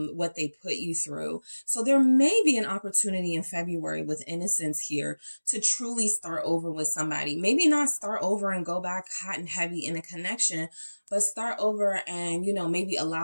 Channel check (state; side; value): inverted; both; correlation -1.00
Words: they put you through. So there may be an opportunity in February with innocence here to truly start over with somebody. Maybe not start over and go back hot and heavy in a connection, but start over and, maybe